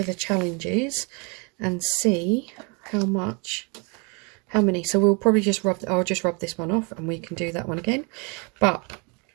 the challenges and see how many. So we'll probably just I'll just rub this one off and we can do that one again. But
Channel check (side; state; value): left; quieter; 32.0 dB